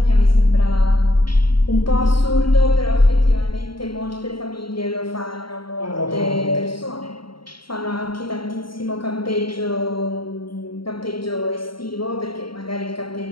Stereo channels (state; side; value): late; right; 0.73 ms